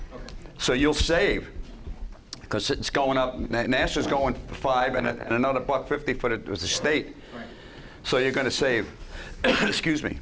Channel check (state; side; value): identical; both; correlation 1.00